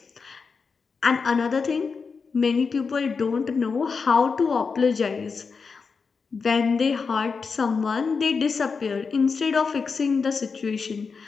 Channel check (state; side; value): quieter; right; 5.1 dB